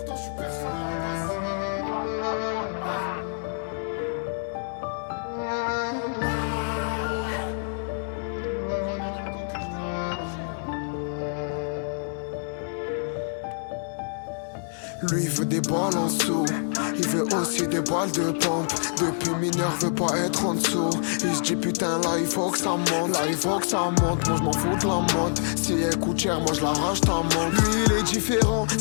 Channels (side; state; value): right; silent; digital silence